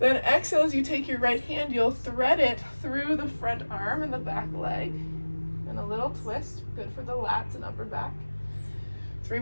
exhale as you take your right hand, you'll thread it through the front arm and the back leg. And a little twist, good for the lats and upper back. 3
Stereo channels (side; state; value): both; inverted; correlation -1.00